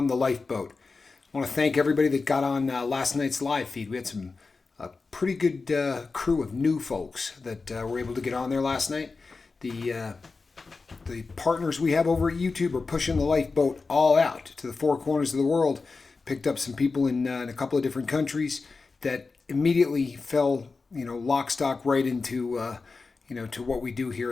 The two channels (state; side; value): quieter; right; 4.2 dB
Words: the lifeboat. I want to thank everybody that got on last night's live feed. We had some pretty good crew of new folks that were able to get on there last night. The partners we have over at YouTube are pushing the lifeboat all out to the four corners of the world. Picked up some people in a couple of different countries that immediately fell, lock, stock right into, to what we do